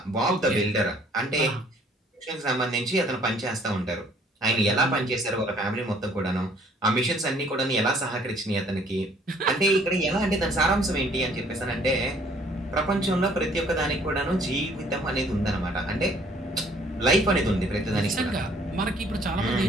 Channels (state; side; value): normal; both; correlation 0.59